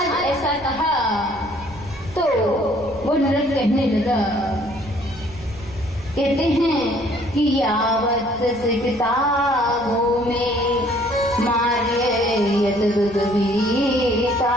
ऐसा कहा तो वो नृग कहने लगा, कहते हैं कि यावत सिकतागो में मार्य यतदुदवीतारिक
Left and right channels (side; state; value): right; noise; rumble, 20 dB below the sound